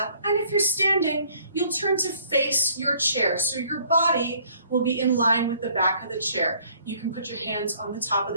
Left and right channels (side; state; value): both; inverted; correlation -0.59